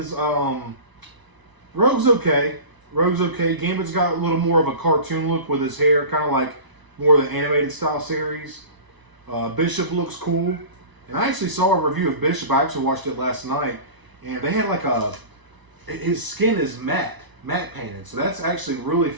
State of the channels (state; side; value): late; left; 1.0 ms